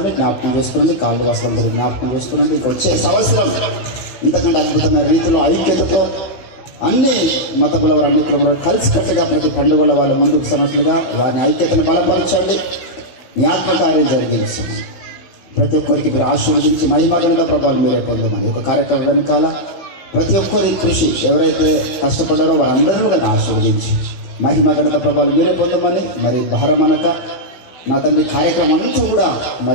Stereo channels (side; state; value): right; late; 16 ms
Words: వచ్చే సంవత్సరం ఇంతకంటే అద్భుతమైన రీతిలో ఐక్యతతో అన్ని మతముల వారు అన్ని కులంలో కలిసికట్టుగా ప్రతి పండుగల వాళ్ళ ముందుకు సన్నట్లుగా వారిని ఐక్యతను బలపరచండి, మీ ఆత్మకార్యం జరిగించండి. ప్రతి ఒక్కరికి మీరు ఆశీర్వదించి మహిమగణత ప్రభావం మీరే పొందమని ఒక కార్యక్రమం వెనకాల ప్రతి ఒక్కరి కృషి ఎవరైతే కష్టపడ్డారో వారందరూ కూడా ఆశీర్వదించి మహిమగణత ప్రభావం మీరే పొందమని మరి భారమనక నా తండ్రి కార్యక్రమం అంతా కూడా